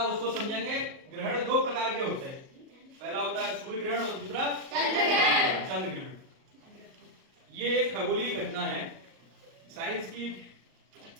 उसको समझेंगे। ग्रहण दो प्रकार के होते हैं, पहला होता है सूर्य ग्रहण और दूसरा चंद्र ग्रहण। ये एक खगोलीय घटना है। साइंस की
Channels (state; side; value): late; left; 38 ms